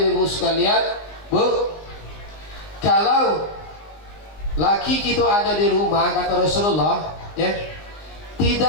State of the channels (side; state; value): right; late; 19 ms